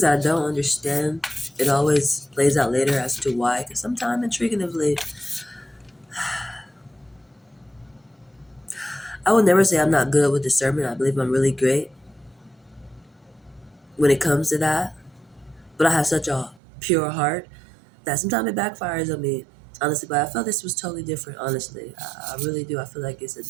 I don't understand, it always plays out later as to why. Because sometimes, intriguingly, I would never say I'm not good with discernment. I believe I'm really great when it comes to that. But I have such a pure heart that sometimes it backfires on me, honestly. But I felt this was totally different, honestly. I really do. I feel like it's a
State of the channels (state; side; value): drops out; left; at 16.6 s